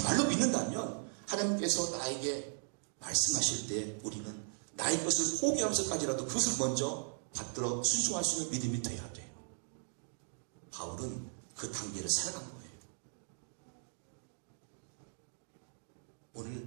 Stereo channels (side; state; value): left; silent; digital silence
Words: 믿는다면 하나님께서 나에게 말씀하실 때 우리는 나의 것을 포기하면서까지라도 그것을 먼저 받들어 순종할 수 있는 믿음이 되어야 돼요. 바울은 그 단계를 살아간 거예요.